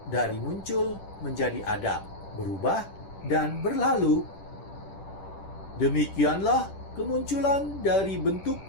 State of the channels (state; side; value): late; right; 10 ms